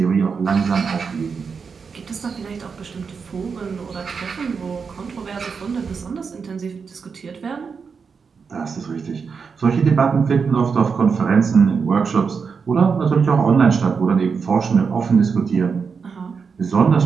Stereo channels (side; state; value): left; quieter; 5.6 dB